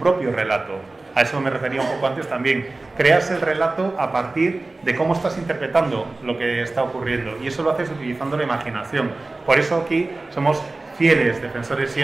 relato. A eso me refería un poco antes también. Creas el relato a partir de cómo estás interpretando lo que está ocurriendo, y eso lo haces utilizando la imaginación. Por eso aquí somos fieles defensores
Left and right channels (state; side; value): quieter; left; 3.2 dB